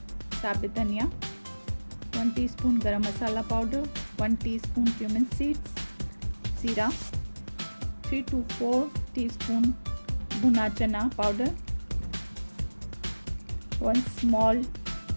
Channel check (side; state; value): both; inverted; correlation -1.00